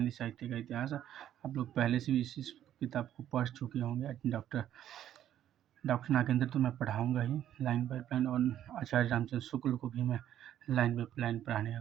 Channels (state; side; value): quieter; left; 11.2 dB